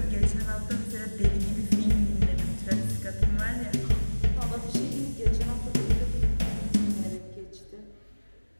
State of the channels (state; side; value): inverted; both; correlation -1.00